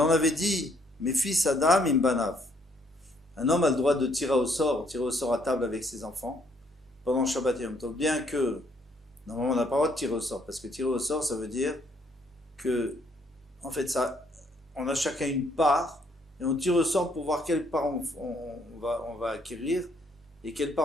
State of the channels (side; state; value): both; normal; correlation 0.68